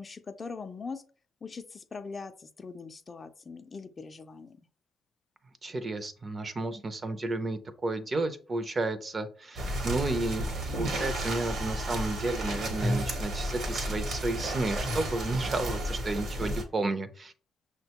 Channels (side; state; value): both; normal; correlation 0.81